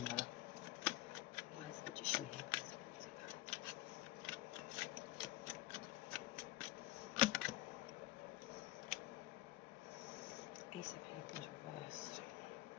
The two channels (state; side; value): quieter; right; 17.6 dB